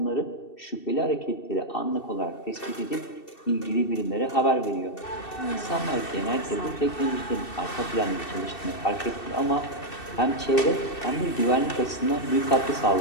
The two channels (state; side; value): late; right; 2.7 ms